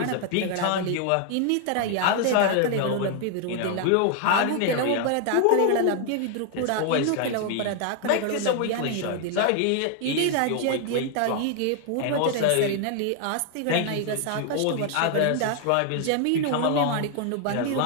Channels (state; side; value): different; both; correlation 0.00